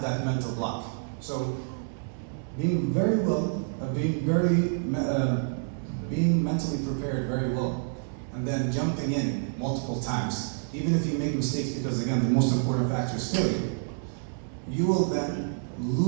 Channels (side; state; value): left; silent; digital silence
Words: that mental block. So being being mentally prepared very well, and then jumping in multiple times, even if you make mistakes, because again, the most important factor is failure, you will then